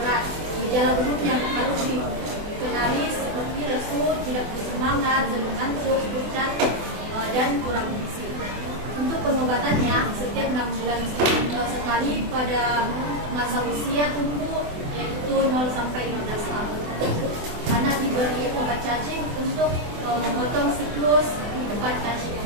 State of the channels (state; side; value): late; left; 24 ms